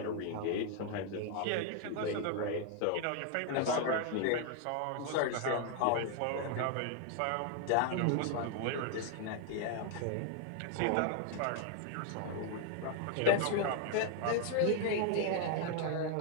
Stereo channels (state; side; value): different; both; correlation 0.00